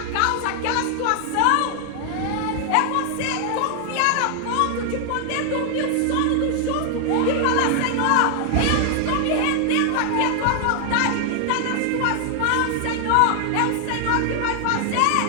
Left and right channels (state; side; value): different; both; correlation 0.00